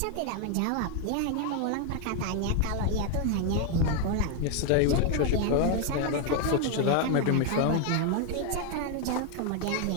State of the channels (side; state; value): both; different; correlation 0.01